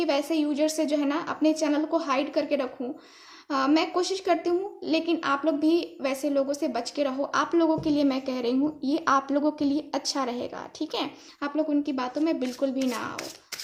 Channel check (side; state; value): both; identical; correlation 1.00